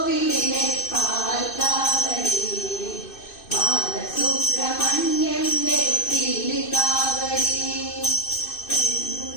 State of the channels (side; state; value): right; late; 2.6 ms